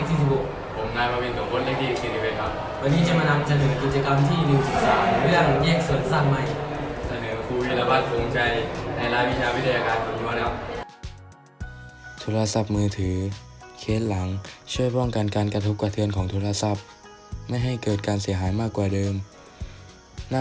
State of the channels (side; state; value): both; identical; correlation 1.00